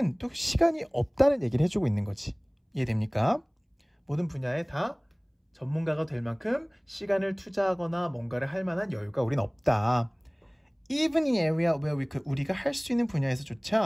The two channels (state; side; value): identical; both; correlation 1.00